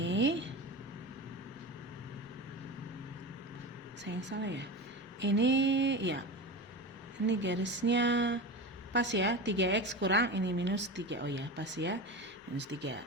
Saya yang salah ya. Ini, ya. Ini garisnya pas ya, 3x kurang ini minus 3. Oh ya, pas ya. Minus 3.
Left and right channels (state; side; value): normal; both; correlation 0.26